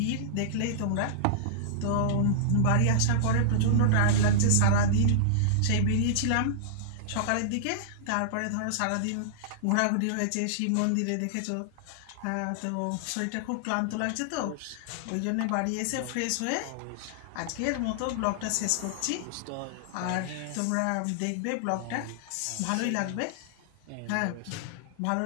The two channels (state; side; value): different; both; correlation -0.01